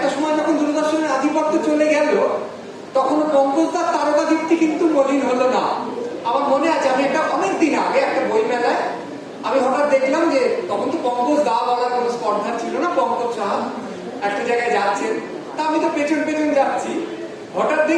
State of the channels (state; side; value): identical; both; correlation 1.00